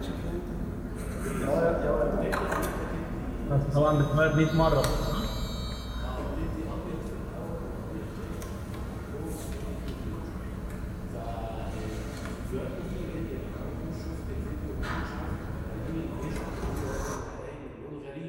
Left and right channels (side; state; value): both; identical; correlation 1.00